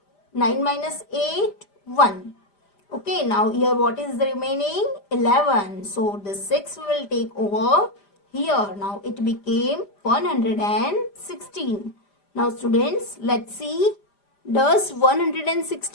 9 minus 8, 1. Okay, now here what is the remaining? 11. So the 6 will take over here. Now it became 116. Now students, let's see. Does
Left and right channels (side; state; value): right; late; 5.0 ms